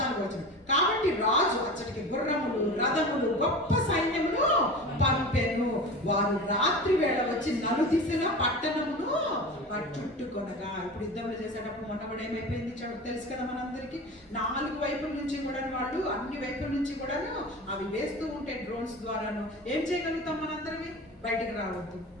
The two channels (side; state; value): both; normal; correlation 0.33